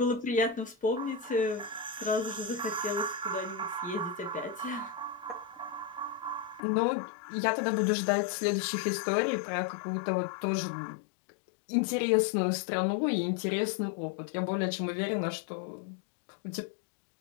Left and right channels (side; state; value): right; drops out; at 6.6 s